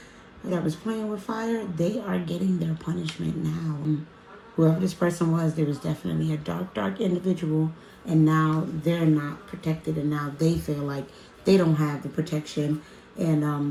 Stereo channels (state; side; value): identical; both; correlation 1.00